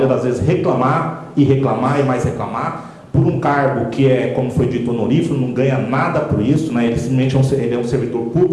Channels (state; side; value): identical; both; correlation 1.00